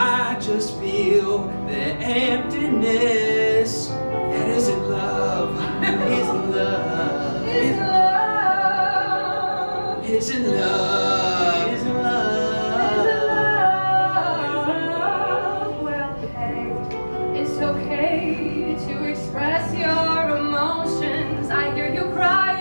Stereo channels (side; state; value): both; inverted; correlation -1.00